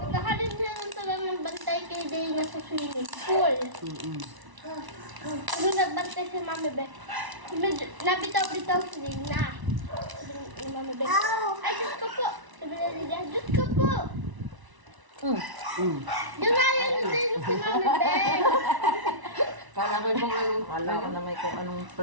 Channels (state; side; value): late; left; 1.0 ms